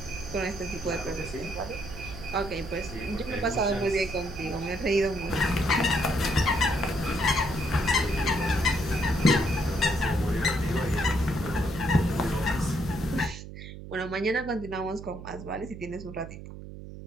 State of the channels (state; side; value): noise; right; hum, 12 dB below the sound